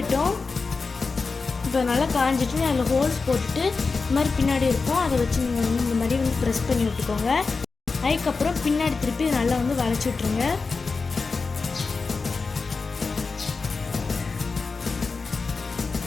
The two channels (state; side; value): quieter; right; 4.4 dB